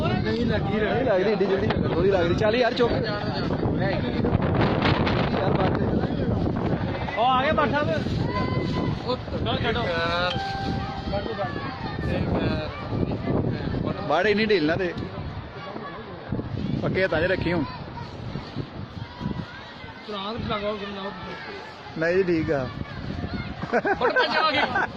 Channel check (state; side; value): identical; both; correlation 1.00